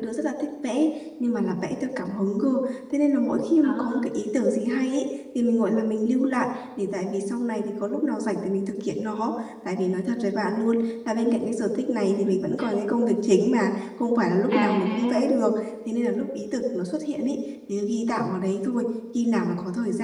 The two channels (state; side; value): identical; both; correlation 1.00